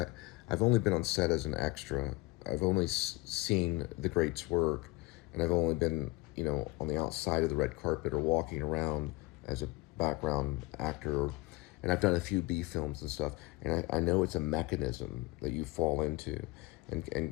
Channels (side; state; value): right; quieter; 22.7 dB